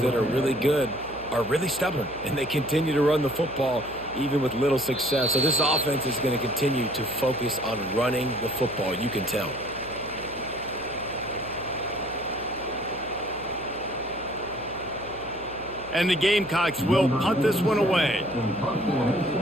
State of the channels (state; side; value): noise; right; hum, 19 dB below the sound